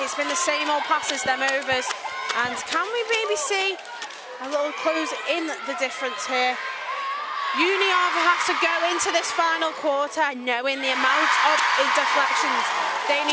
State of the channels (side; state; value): both; identical; correlation 1.00